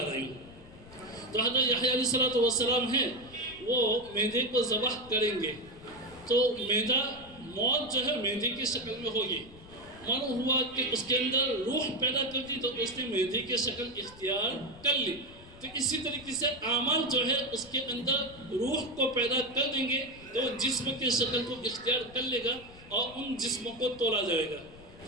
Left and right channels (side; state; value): left; noise; rumble, 20 dB below the sound